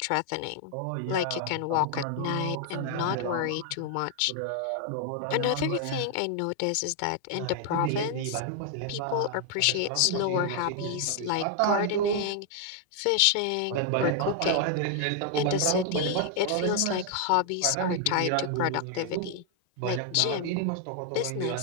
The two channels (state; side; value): different; both; correlation 0.00